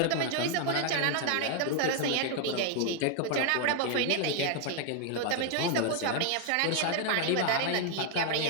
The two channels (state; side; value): different; both; correlation 0.00